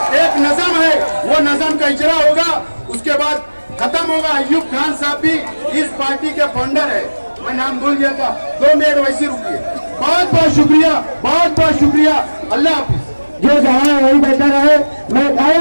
एक नज़म है, वो नज़म का इजरा होगा, उसके बाद खत्म होगा। अयूब खान साहब भी इस पार्टी के फाउंडर है, मैं नाम भूल गया था, 2 मिनट वैसे रुकिए। बहुत बहुत शुक्रिया, बहुत बहुत शुक्रिया, अल्लाह हाफिज। जो जहाँ वही बैठा रहे, मैं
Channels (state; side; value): inverted; both; correlation -1.00